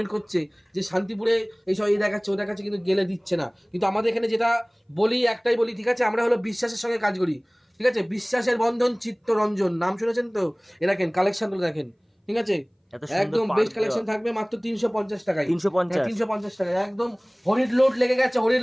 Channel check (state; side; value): identical; both; correlation 1.00